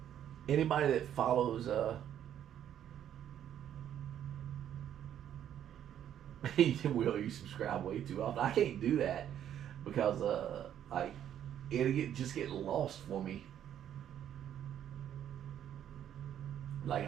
anybody that follows Will, you subscribe way too often. I can't do that because like just get lost for me. Like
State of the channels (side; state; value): left; quieter; 10.3 dB